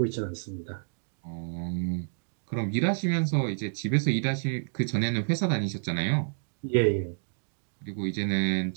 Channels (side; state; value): left; silent; digital silence